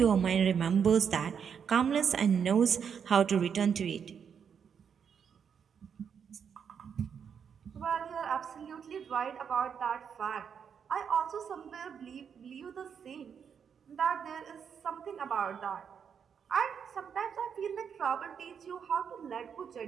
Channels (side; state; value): left; quieter; 7.3 dB